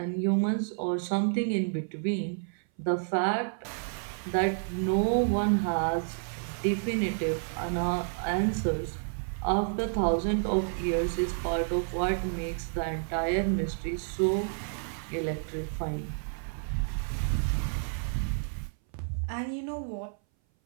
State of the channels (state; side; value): silent; left; 58 dB below the other